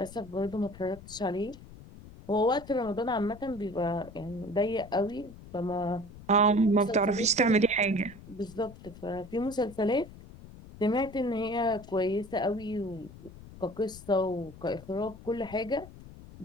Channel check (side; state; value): left; noise; rumble, 17 dB below the sound